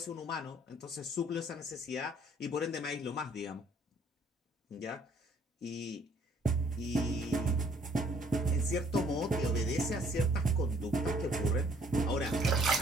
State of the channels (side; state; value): both; normal; correlation 0.62